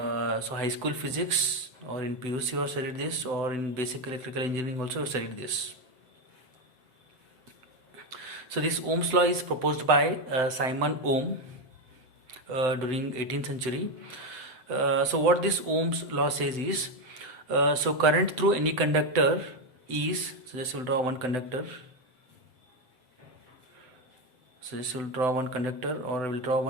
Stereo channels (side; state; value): left; late; 7.9 ms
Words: high school physics, or in PUC you studied this, or in basic electrical engineering also you studied this. So this Ohm's law is proposed by Simon Ohm during 18th century. So what this Ohm's law says is, so current through any conductor is, so just will draw one conductor. So this will draw one conductor, or I will draw